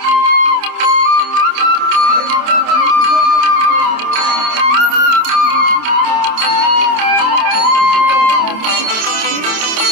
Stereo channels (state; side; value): late; left; 27 ms